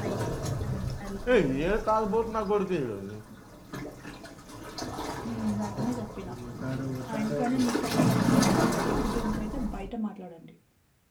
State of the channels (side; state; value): both; identical; correlation 1.00